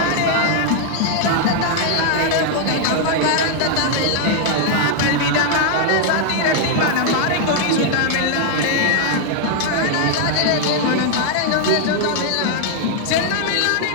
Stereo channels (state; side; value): different; both; correlation 0.00